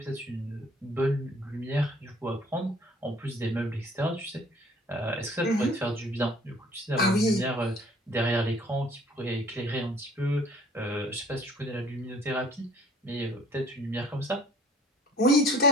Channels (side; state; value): both; normal; correlation 0.54